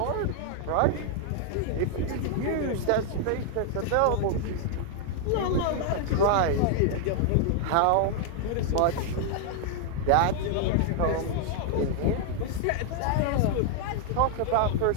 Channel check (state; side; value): different; both; correlation 0.00